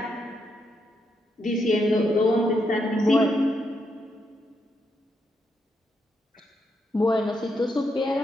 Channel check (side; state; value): both; normal; correlation 0.80